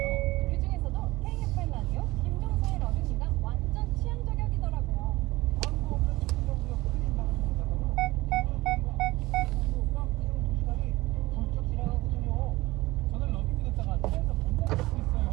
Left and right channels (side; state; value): left; quieter; 19.5 dB